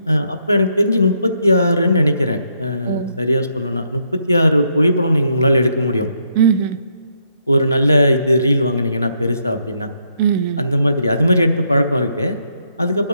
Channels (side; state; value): both; inverted; correlation -0.75